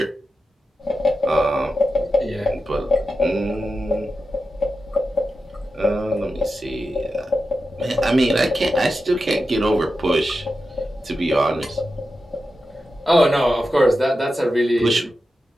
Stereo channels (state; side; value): normal; both; correlation 0.91